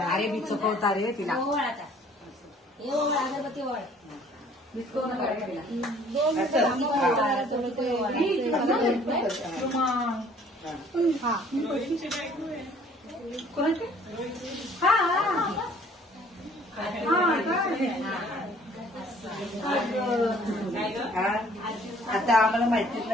अरे मी चुकवता रे तिला अगरबत्ती वळ आता आम्हाला माहितीच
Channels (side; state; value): both; normal; correlation 0.56